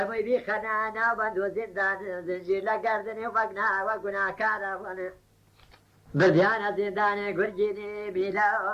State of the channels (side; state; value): both; identical; correlation 1.00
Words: بیخەنە ناو بەند و زیندان زنجیر لە گەردنی و بەگناوە گوناکارە بوونێ بردیانە زیندانێ گورگینی